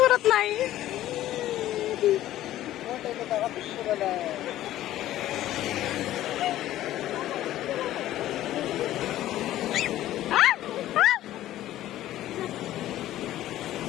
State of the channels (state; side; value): quieter; right; 13.8 dB